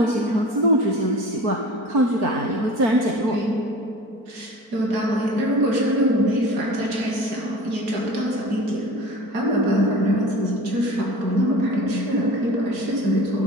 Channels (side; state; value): left; late; 4.4 ms